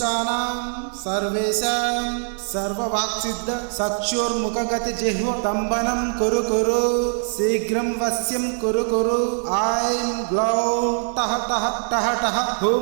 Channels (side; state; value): left; silent; 58 dB below the other